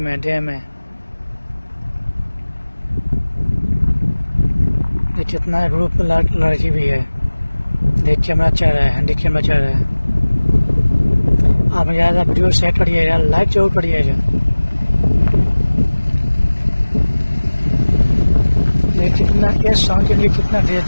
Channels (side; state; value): both; inverted; correlation -1.00